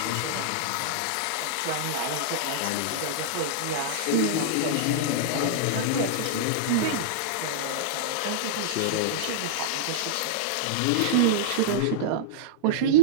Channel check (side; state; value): both; different; correlation -0.03